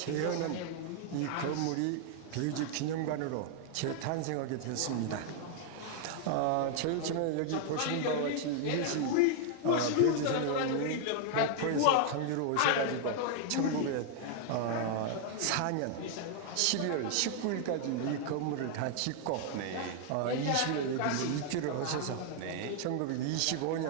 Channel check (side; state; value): both; different; correlation 0.00